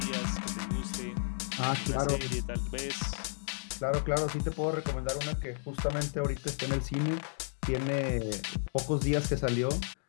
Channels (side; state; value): right; silent; digital silence